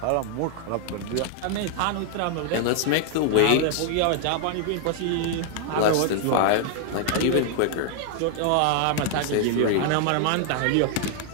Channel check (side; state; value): both; different; correlation 0.00